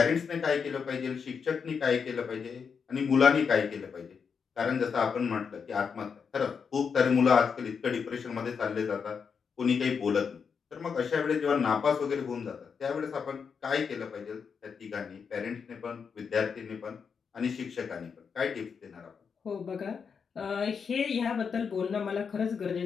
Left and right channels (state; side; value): quieter; right; 6.2 dB